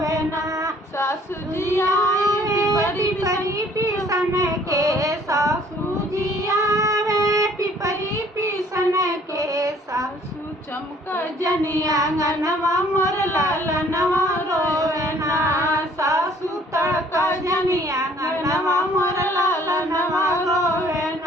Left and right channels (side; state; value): both; normal; correlation 0.58